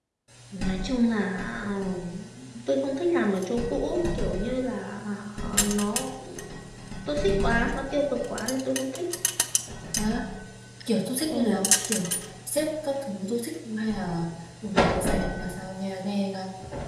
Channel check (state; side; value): identical; both; correlation 1.00